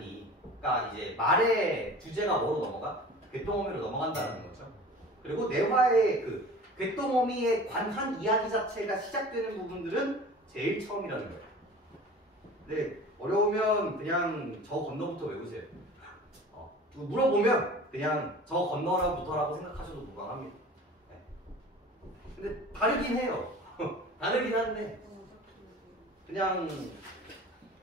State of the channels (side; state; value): both; normal; correlation 0.40